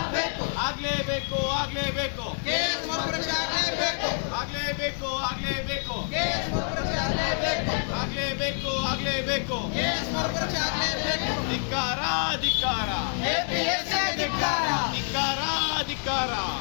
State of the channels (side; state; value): right; silent; 60 dB below the other